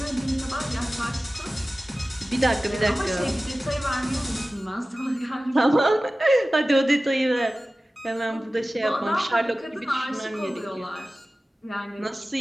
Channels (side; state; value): both; normal; correlation 0.96